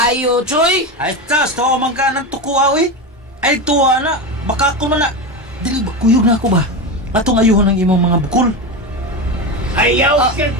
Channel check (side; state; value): both; normal; correlation 0.18